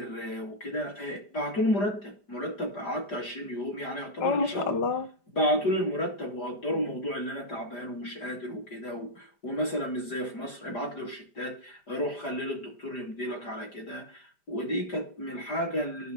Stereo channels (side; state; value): right; late; 5.0 ms